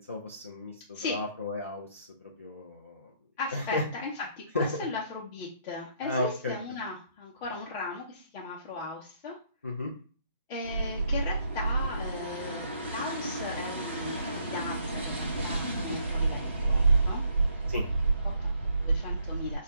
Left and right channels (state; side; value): inverted; both; correlation -0.68